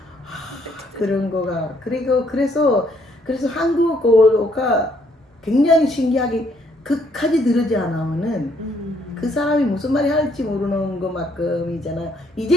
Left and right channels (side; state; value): both; normal; correlation 0.68